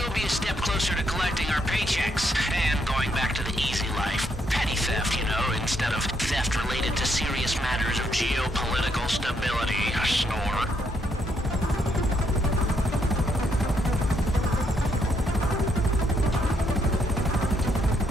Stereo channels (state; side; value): normal; both; correlation 0.75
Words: be a step closer to collecting our paychecks, and going back to the easy life. Petty theft, you know, instead of theft related to serious matters of geopolitical stability. A snore.